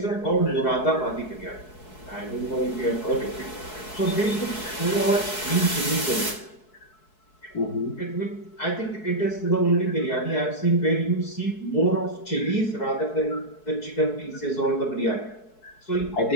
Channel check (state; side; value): late; right; 4.7 ms